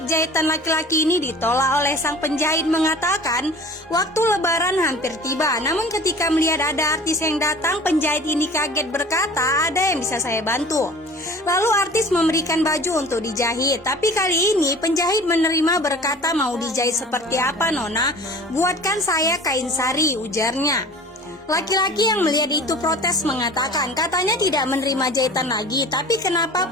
jahitan laki-laki ini ditolak oleh sang penjahit mengatakan waktu lebaran hampir tiba. Namun ketika melihat ada artis yang datang, penjahit ini kaget berkata, "Ada yang bisa saya bantu?" Lalu artis memberikan baju untuk dijahit. Tapi kali ini penjahit menerima berkata, "Mau dijahit seperti apa, Nona? Buatkan saya kain sari," ujarnya. Laki-laki yang melihat itu protes mengatakan katanya tidak menerima jahitan lagi, tapi kenapa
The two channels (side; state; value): both; normal; correlation 0.43